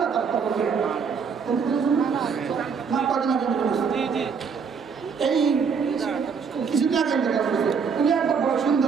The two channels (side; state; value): left; quieter; 6.0 dB